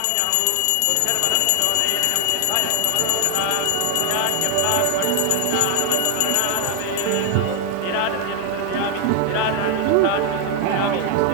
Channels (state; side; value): different; both; correlation 0.00